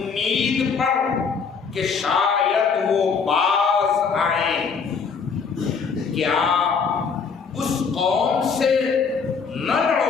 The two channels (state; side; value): quieter; right; 5.6 dB